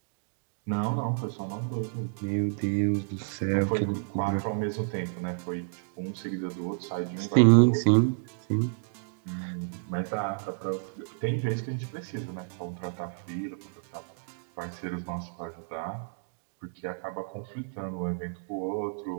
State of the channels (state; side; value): silent; left; digital silence